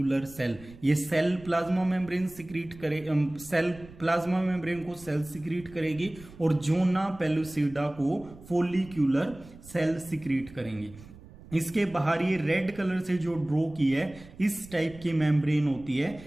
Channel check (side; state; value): right; noise; rumble, 20 dB below the sound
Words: cell. ये सेल प्लाज्मा मेम्ब्रेन सिक्रीट करे, सेल प्लाज्मा मेम्ब्रेन को सेल सिक्रीट करेगी और जोना पेलुसिडा को फोलिक्यूलर सेल सिक्रीट करेंगी. इसके बाहर ये रेड कलर से जो ड्रॉ की है इस टाइप की मेम्ब्रेन होती है